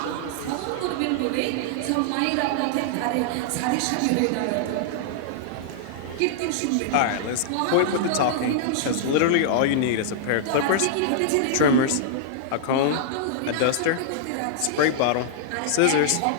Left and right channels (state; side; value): different; both; correlation -0.01